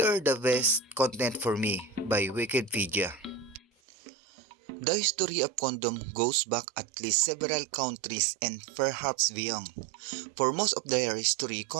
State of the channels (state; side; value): drops out; left; at 3.7 s